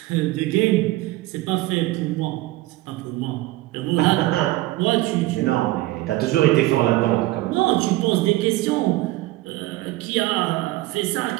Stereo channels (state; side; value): quieter; left; 18.1 dB